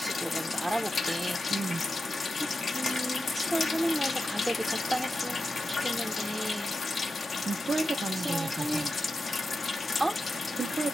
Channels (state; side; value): normal; both; correlation 0.90